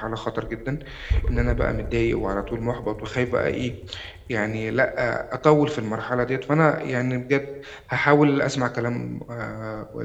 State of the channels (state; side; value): identical; both; correlation 1.00